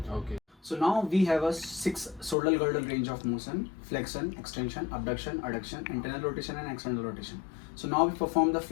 Okay. So now we have a 6 shoulder girdle range of motion: flexion, extension, abduction, adduction, internal rotation and external rotation. So now we perform the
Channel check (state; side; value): drops out; right; at 2.4 s